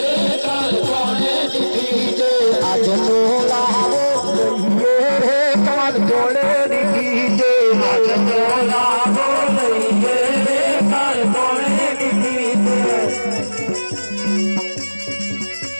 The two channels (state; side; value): inverted; both; correlation -1.00